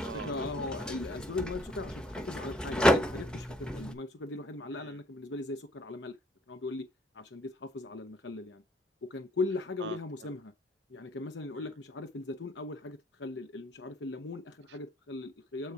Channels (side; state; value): both; normal; correlation 0.63